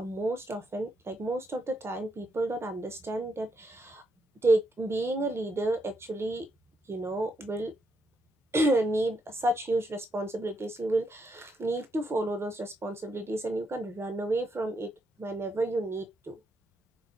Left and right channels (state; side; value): normal; both; correlation 0.79